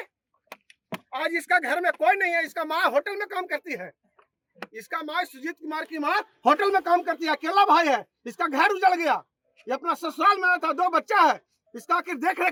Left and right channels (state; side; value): identical; both; correlation 1.00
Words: आज इसका घर में कोई नहीं है, इसका माँ होटल में काम करती है, इसका माँ सुजीत कुमार की माँ होटल में काम करती है, अकेला भाई है, इसका घर उजड़ गया, ये अपना ससुराल में था, 2 बच्चा है, इसका आखिर देख